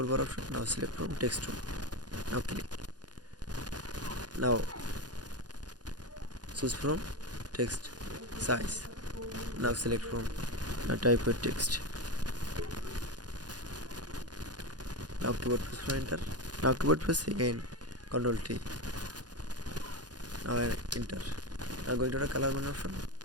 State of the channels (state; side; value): late; left; 0.69 ms